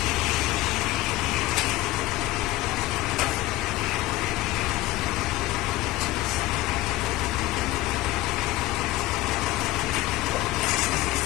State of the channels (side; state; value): right; quieter; 17.6 dB